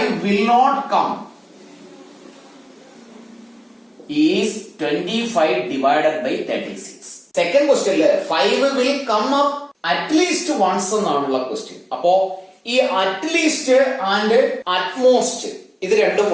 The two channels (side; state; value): both; identical; correlation 1.00